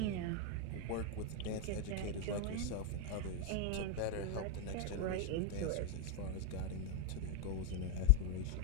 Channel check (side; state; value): both; different; correlation 0.00